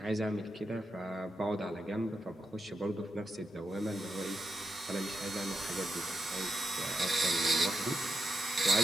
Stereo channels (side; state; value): both; normal; correlation 0.87